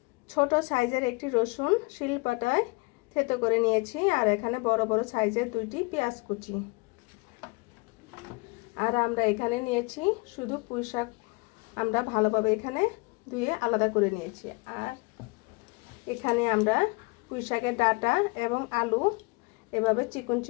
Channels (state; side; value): quieter; right; 27.8 dB